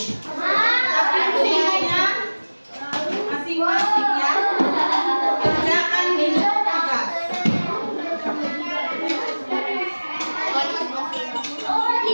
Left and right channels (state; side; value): inverted; both; correlation -1.00